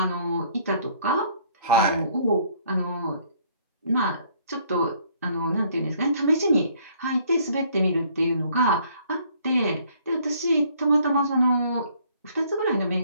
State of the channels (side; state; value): both; inverted; correlation -0.62